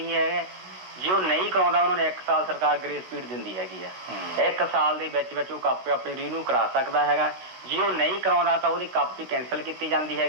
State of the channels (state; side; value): late; left; 16 ms